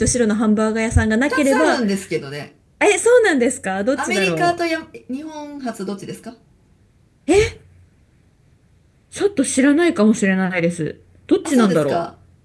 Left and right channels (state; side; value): identical; both; correlation 1.00